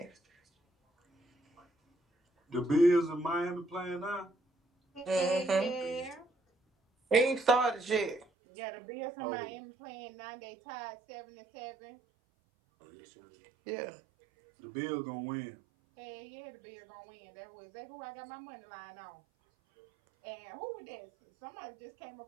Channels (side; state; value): left; drops out; at 8.2 s